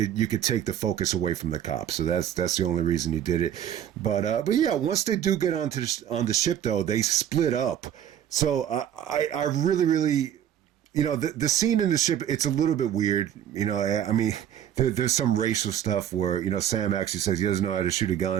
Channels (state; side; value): quieter; left; 10.2 dB